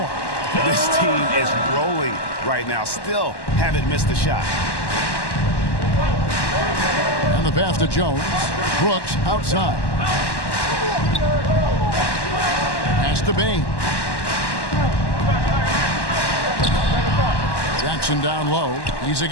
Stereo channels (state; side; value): late; right; 1.1 ms